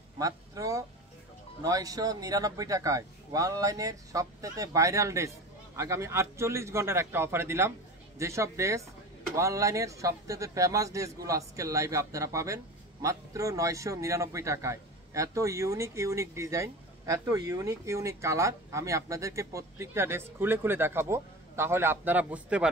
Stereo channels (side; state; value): both; normal; correlation 0.31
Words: মাত্র 999 টাকায় অনলাইনের সবথেকে ভাইরাল ড্রেস আগামী 48 ঘন্টার একটা অফারে দিলাম। যেসব ড্রেস অনলাইনের সবথেকে ফেমাস ড্রেসগুলো আজকের লাইভে আপনারা পাবেন মাত্র 999 টাকায়। এত ইউনিক ডিজাইন, এত ইউনিক কালার, আমি আপনাদেরকে প্রত্যেকটা ড্রেস খুলে খুলে দেখাবো, তাহলে আপনারা বুঝতে